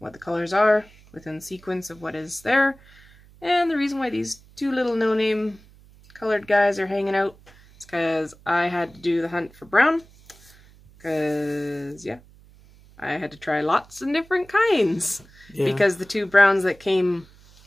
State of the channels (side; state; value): right; noise; hum, 26 dB below the sound